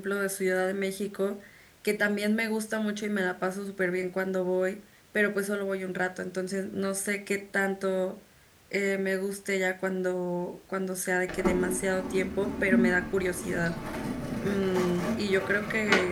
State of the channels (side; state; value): both; identical; correlation 1.00